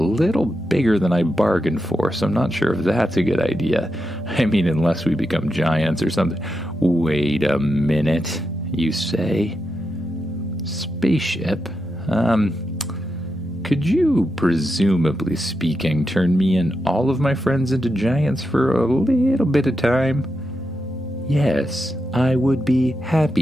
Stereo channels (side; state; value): both; normal; correlation 0.86